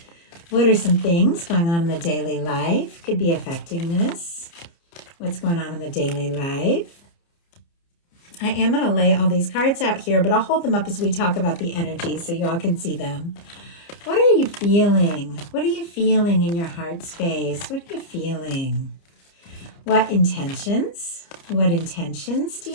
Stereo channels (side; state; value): right; late; 29 ms